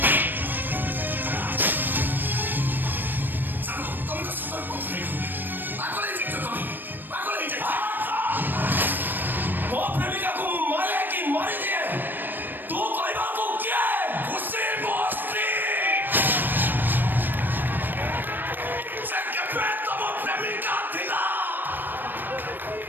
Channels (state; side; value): late; left; 0.092 ms